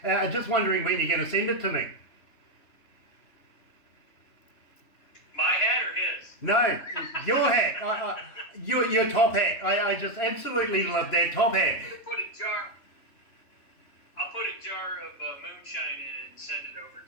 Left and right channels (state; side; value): late; right; 3.3 ms